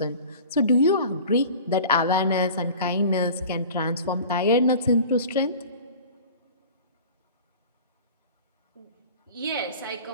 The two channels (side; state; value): both; inverted; correlation -0.41